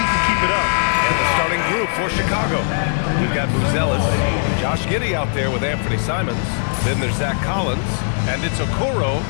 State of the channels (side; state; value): right; silent; digital silence